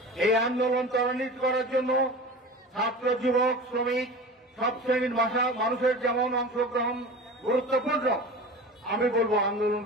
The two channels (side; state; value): both; normal; correlation 0.34